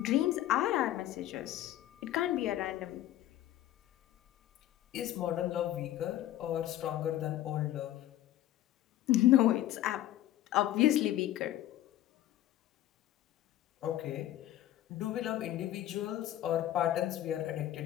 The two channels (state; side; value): quieter; right; 13.6 dB